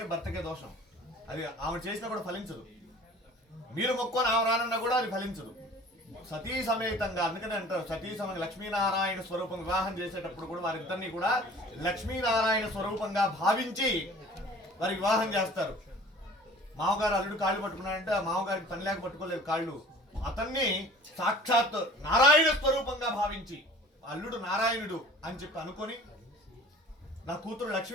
భర్తకే దోషం, అది ఆమె చేసినా కూడా ఫలించదు. మీరు మొక్కుని ఆమె రానన్నా కూడా అది ఫలించదు. సతీ సమేతంగా, అందుకని అంటారు సతీ సమేత లక్ష్మీనారాయణ స్వరూపం వివాహం చేసేటప్పుడు కూడా వారిద్దరినీ కూడా లక్ష్మీనారాయణ స్వరూపంగా భావించి వారి వివాహం చేస్తారు. మామగారు అల్లుడు కాళ్ళు పట్టుకున్నాడంటే ఆ మామగారికి పని లేక పట్టుకోలేదు కాళ్ళు, అతన్ని సాక్షాత్ నారాయణ స్వరూపంగా భావించి అల్లుడు నారాయణుడు అని చెప్పి అనుకొని నా కూతురు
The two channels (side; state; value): both; normal; correlation 0.47